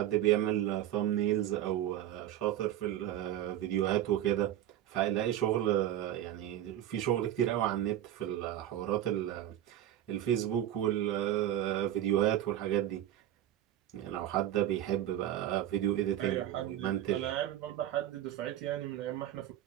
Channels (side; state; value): left; quieter; 12.1 dB